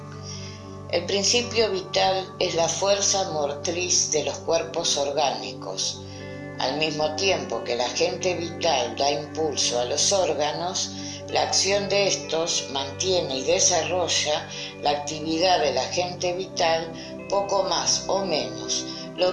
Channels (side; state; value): both; identical; correlation 1.00